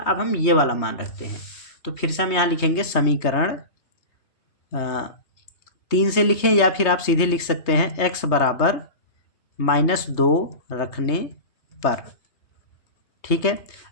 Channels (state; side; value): late; right; 3.2 ms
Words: हम ये वाला मान रखते हैं। तो फिर से हम यहाँ लिखेंगे समीकरण 3 से लिखें, या फिर आप सीधे लिख सकते हैं x बराबर -2 रखने पर। ठीक है,